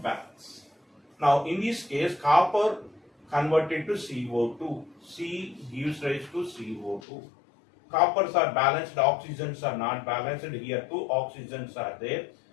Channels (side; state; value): right; drops out; at 7.0 s